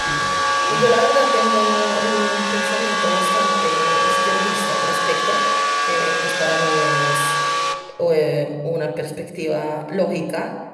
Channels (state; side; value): identical; both; correlation 1.00